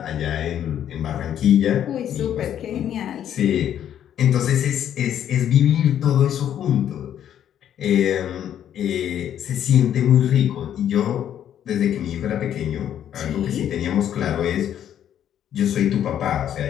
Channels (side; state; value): right; quieter; 10.2 dB